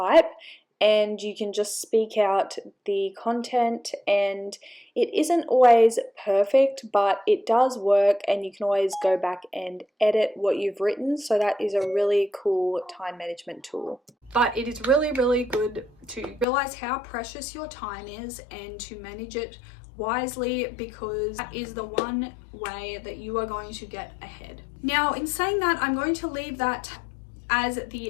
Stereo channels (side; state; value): right; drops out; at 16.4 s